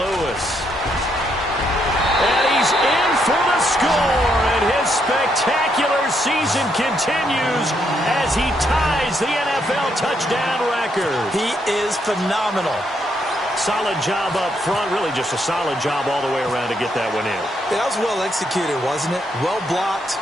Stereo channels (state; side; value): normal; both; correlation 0.76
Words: And he he's in for the score, and his spectacular season continues as he ties the NFL touchdown record. He is phenomenal. Solid job up front, really just a solid job all the way around to get that one in. That was well executed, wasn't it? Well blocked,